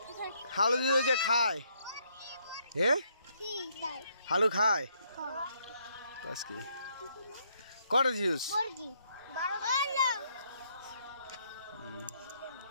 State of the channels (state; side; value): inverted; both; correlation -0.72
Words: হালু দিয়ে যে খায় হ্যাঁ কি তাই হালু খায় বাস কি কটা দিছস বর্গি 12